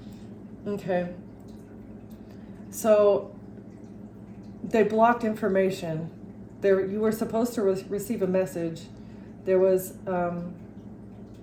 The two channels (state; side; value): identical; both; correlation 1.00